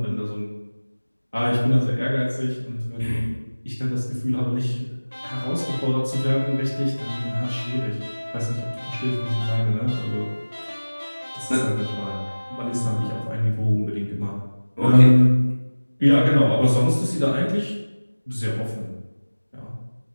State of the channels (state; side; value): inverted; both; correlation -1.00